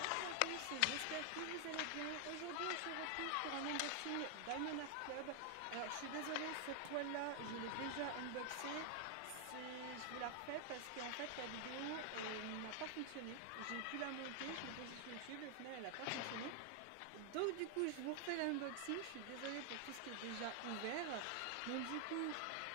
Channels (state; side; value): different; both; correlation 0.00